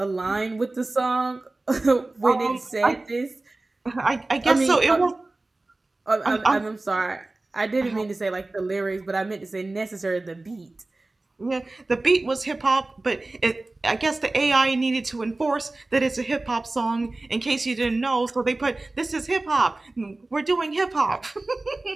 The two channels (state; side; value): quieter; left; 3.0 dB